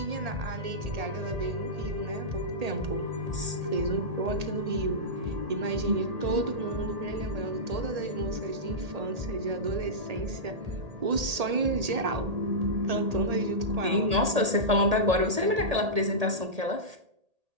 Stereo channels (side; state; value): left; late; 1.8 ms